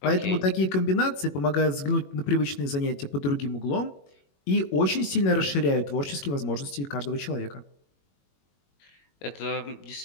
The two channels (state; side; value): late; right; 21 ms